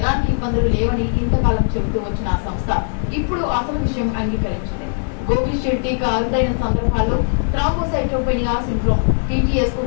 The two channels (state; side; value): silent; right; 59 dB below the other